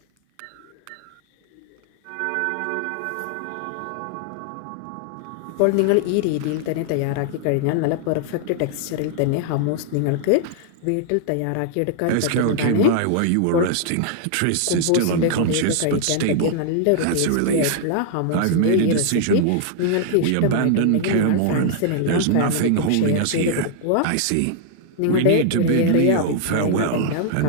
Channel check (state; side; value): different; both; correlation -0.01